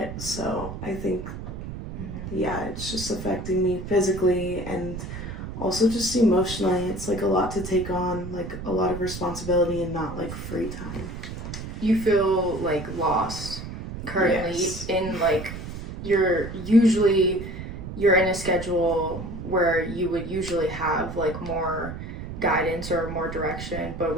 so I think yeah, it's just affecting me physically and also just emotionally. It's a lot to take on, a lot of responsibility and not free time. You feel lost currently. Yes. In you're in a schedule where you would usually have more guidance or more direction, but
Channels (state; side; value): noise; right; rumble, 9 dB below the sound